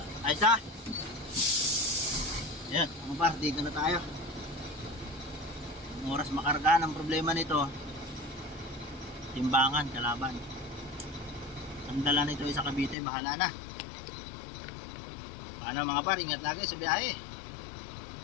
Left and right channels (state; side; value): drops out; right; at 13.0 s